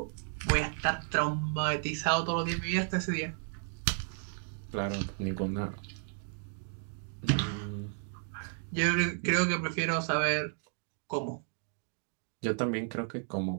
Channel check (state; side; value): silent; left; 56 dB below the other